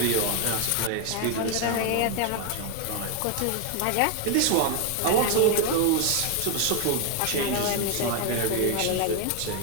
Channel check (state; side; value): different; both; correlation 0.01